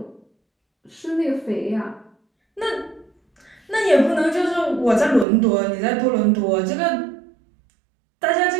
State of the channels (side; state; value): left; drops out; at 5.2 s